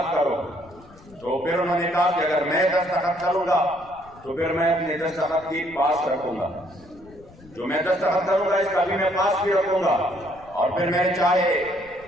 करो, तो फिर उन्होंने कहा कि अगर मैं दस्तखत करूंगा तो फिर मैं अपने दस्तखत की पास रखूंगा, जो मैं दस्तखत करूंगा इसका भी मैं पास भी रखूंगा, और फिर मैं चाहे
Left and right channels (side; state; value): left; noise; rumble, 24 dB below the sound